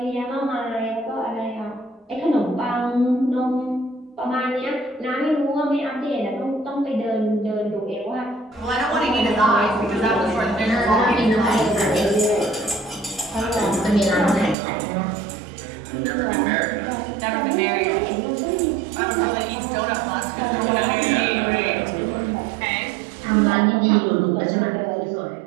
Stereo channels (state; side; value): drops out; left; at 14.6 s